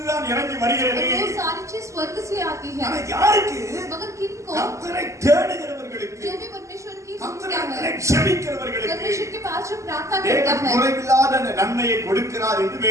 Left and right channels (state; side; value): late; left; 0.15 ms